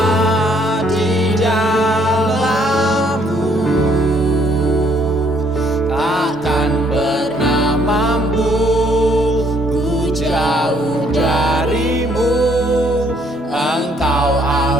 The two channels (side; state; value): both; normal; correlation 0.66